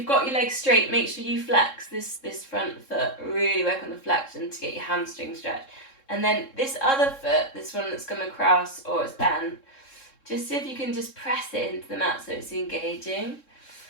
got your legs straight, make sure you flex this front foot. Really work on the flexion to get your hamstring stretched. And then this other foot, this one that's come across or it's bent, just see if you can just press it into the mat so it's engaging.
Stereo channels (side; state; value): right; late; 3.7 ms